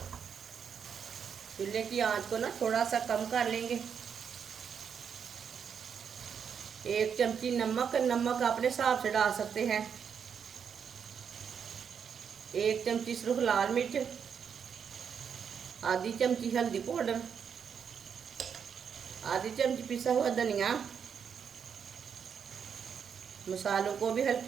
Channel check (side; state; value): left; quieter; 7.2 dB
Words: चूल्हे की आंच को ना थोड़ा सा कम कर लेंगे। 1 चमची नमक, नमक अपने हिसाब से डाल सकते हैं। 1 चमची सिर्फ लाल मिर्च, आधी चमची हल्दी पाउडर, आधी चमची पिसा हुआ धनिया। मसालों को भी